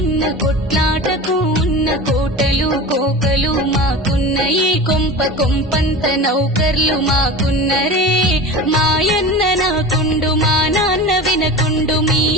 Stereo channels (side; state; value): both; normal; correlation 0.31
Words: కొట్లాటకు ఉన్న కోటలు కోకలు మాకున్న ఈ కొంప కొంపంత నౌకర్లు మాకున్నరే మాయన్న నాకుండు మా నాన్న వినకుండు మీ